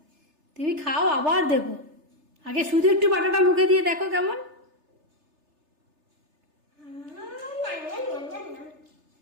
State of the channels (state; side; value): late; left; 3.3 ms